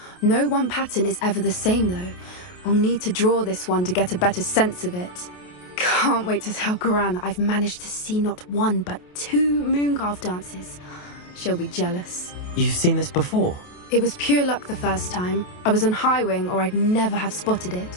No one pattern is ever the same, though. We'll need to draw this one to get a better sense of it. Can't wait to tell Gran that I've managed to see not one, but 2 mooncalf dances. She'll be jealous. You've seen this before? It was pure luck the first time. I was on Highwing, or I'd never have spotted it.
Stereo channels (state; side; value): late; right; 28 ms